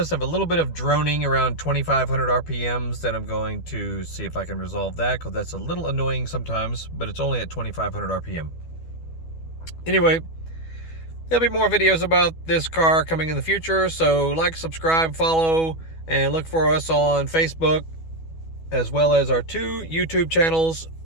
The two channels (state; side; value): late; right; 12 ms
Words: have a little bit of droning around 2,500 RPMs that I'm going to see if I can resolve that, because that's a little annoying sometimes, but it's only at 2,500 RPM. Anyway, there'll be more videos about this car coming in the future, so like, subscribe, follow, and look for us on Facebook, as well as our 2 YouTube channels